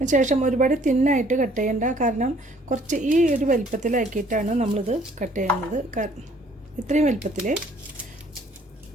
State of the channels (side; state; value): both; normal; correlation 0.60